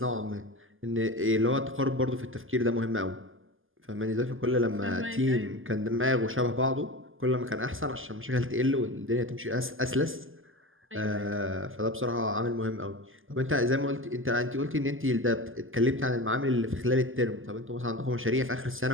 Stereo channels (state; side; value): late; left; 0.59 ms